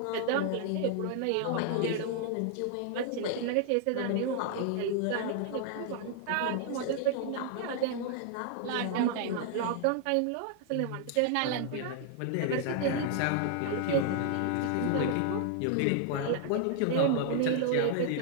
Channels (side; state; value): both; different; correlation 0.00